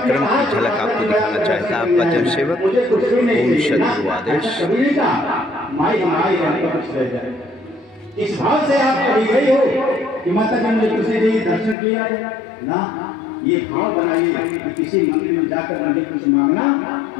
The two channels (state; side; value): drops out; right; at 11.8 s